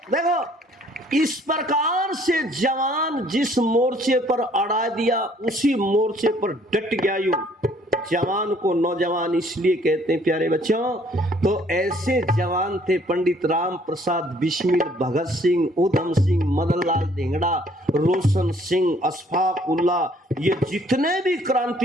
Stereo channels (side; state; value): both; normal; correlation 0.61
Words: देखो इस प्रकार से जवान जिस मोर्चे पर अड़ा दिया उसी मोर्चे पर डट गया यू, जवान को नौजवान इसलिए कहते हैं प्यारे बच्चों। तो ऐसे जवान थे पंडित राम प्रसाद बिस्मिल, भगत सिंह, उधम सिंह, मदन लाल धिंगड़ा, रोशन सिंह, अशफाक उल्ला, ये जितने भी